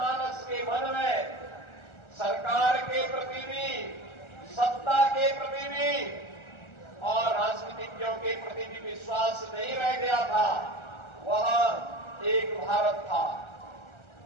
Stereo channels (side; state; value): right; late; 1.3 ms